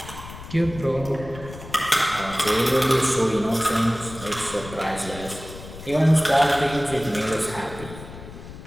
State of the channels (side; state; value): left; noise; rumble, 14 dB below the sound